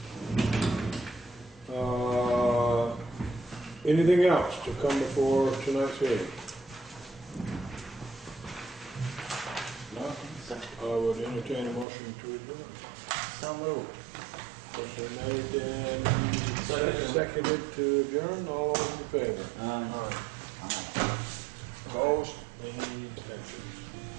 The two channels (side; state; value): left; drops out; at 11.9 s